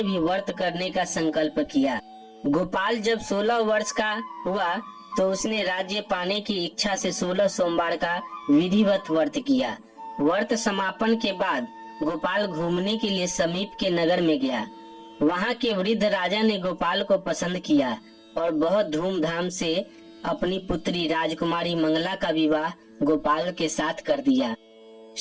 भी व्रत करने का संकल्प किया। गोपाल जब 16 वर्ष का हुआ तो उसने राज्य पाने की इच्छा से 16 सोमवार का विधिवत व्रत किया। व्रत समापन के बाद गोपाल घूमने के लिए समीप के नगर में गया। वहां के वृद्ध राजा ने गोपाल को पसंद किया और बहुत धूमधाम से अपनी पुत्री राजकुमारी मंगला का विवाह गोपाल के साथ कर दिया।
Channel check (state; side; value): identical; both; correlation 1.00